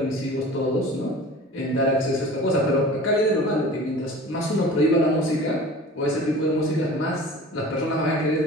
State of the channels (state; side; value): normal; both; correlation 0.40